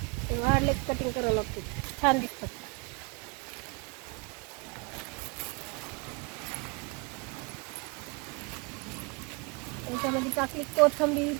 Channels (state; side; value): quieter; left; 30.0 dB